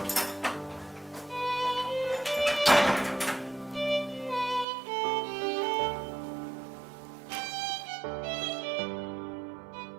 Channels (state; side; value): drops out; left; at 4.7 s